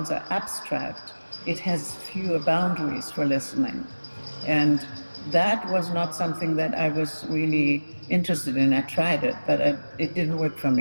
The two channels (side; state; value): both; inverted; correlation -1.00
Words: are abstract, it has fewer boundaries for listening. And that was not something that I was really interested in. I tried it, but it didn't work for